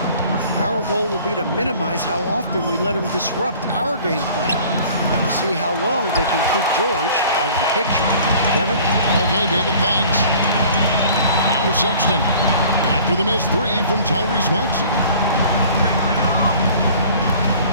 Our goal will be to minimize how often we let him disrupt our game plan. We'll see how long they can keep George out of the picture. Kevin? Okay, David, thanks. Now Sexton after the missed 3 from Tyrese Maxey.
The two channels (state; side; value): inverted; both; correlation -0.49